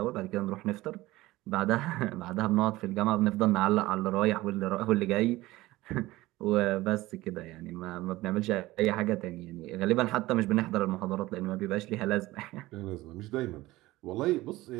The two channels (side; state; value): left; quieter; 18.3 dB